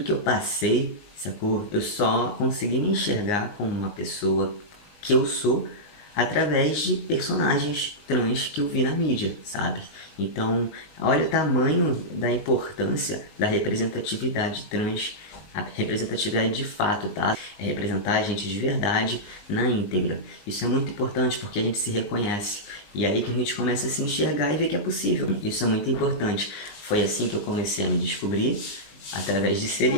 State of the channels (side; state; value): right; late; 19 ms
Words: que eu passei, sacou? Eu só consegui me enxergar como uma pessoa que eu sou através de personagens trans que eu vi na mídia, sabe? Então, olha o tamanho da importância da representatividade trans, a representatividade de fato, tá? É representar a gente de verdade na íntegra. Isso é muito importante porque a gente se reconhece. E é aí que a gente começa a se enxergar e ver que é possível. Isso é muito importante. Foi assim que eu comecei a me descobrir, através de